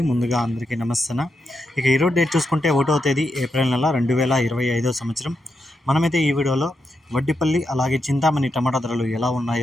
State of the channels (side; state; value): both; normal; correlation 0.84